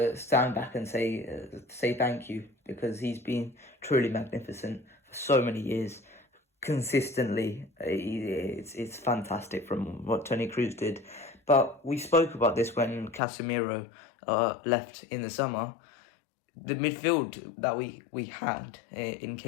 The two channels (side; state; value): right; drops out; at 13.2 s